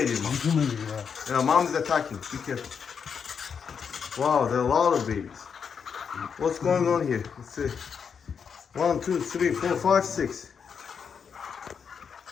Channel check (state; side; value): quieter; right; 6.6 dB